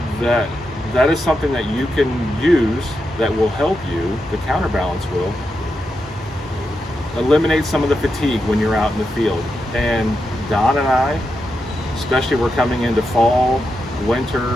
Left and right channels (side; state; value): both; normal; correlation 0.86